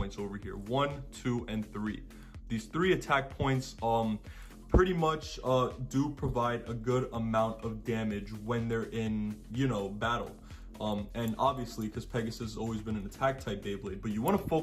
over here, 1, 2, and 3. These 3 attack points pretty much do provide a good amount of damage when they're in, battle. And obviously, because Pegasus has always been an attack type Beyblade, but you want to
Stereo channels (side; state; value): both; identical; correlation 1.00